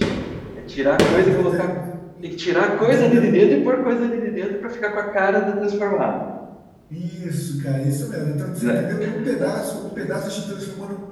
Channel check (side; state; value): both; identical; correlation 1.00